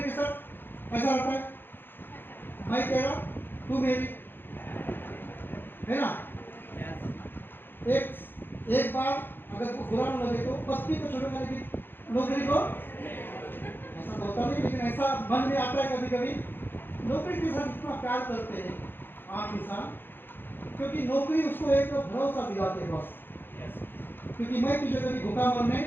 के साथ ऐसा रहता है, मैं तेरा तू मेरी, है ना। एक बार अगर को बुरा न लगे तो पत्नी को छोड़कर लेकिन नौकरी को, ऐसा तो होता नहीं, लेकिन ऐसा मन में आता है कभी कभी, नौकरी के साथ इतना प्यार करते हैं आम इंसान, क्योंकि नौकरी उसको एक भरोसा दिलाते हैं बस, क्योंकि मैं तुझे कभी भूखा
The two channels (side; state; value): right; late; 0.10 ms